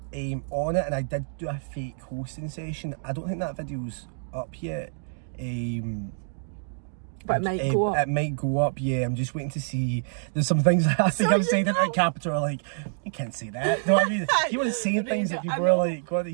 on it, and I did do a fake hosting session. I don't think that video's up yet. But it might go up. It might go up, yeah. I'm just waiting to see. There's some things I think I've said at Capital are like, you can't say that. No, I mean, you want to say things that people are like, what are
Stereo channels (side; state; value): left; silent; digital silence